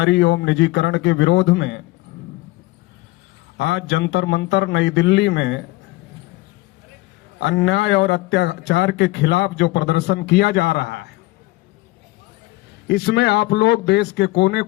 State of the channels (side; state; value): right; quieter; 20.3 dB